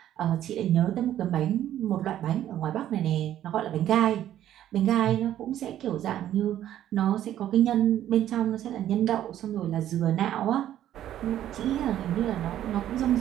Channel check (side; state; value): left; quieter; 11.8 dB